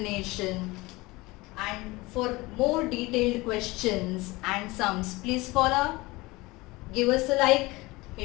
and for more detailed questions and sums, please follow, give us a like,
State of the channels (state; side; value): quieter; right; 21.9 dB